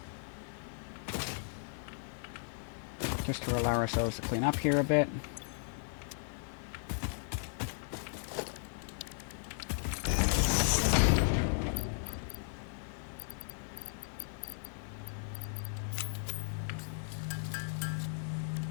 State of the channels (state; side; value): silent; right; digital silence